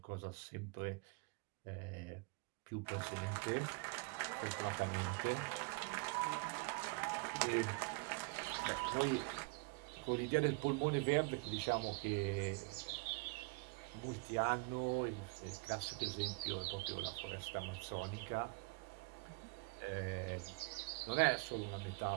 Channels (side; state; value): left; quieter; 29.1 dB